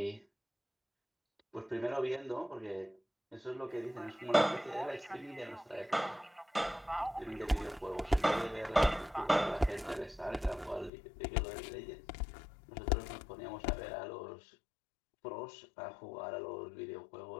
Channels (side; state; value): right; drops out; at 10.9 s